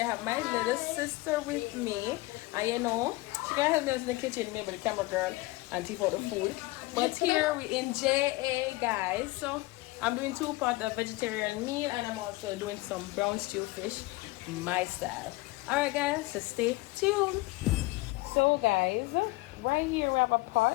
I have my little sister with me, and you know she gonna help me in the kitchen, maybe the camera girl, and take out the food. But here we in JA guys, so I'm doing 2 pots of vegetarian meal, and I'm also doing some brown stew fish my style. All right guys, so stay tuned. So guys, right here we have a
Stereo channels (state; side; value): quieter; right; 21.3 dB